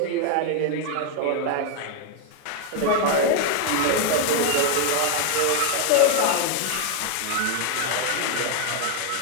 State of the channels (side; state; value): both; different; correlation 0.00